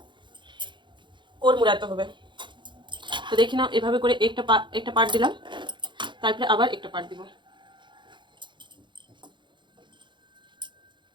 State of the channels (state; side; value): late; left; 0.23 ms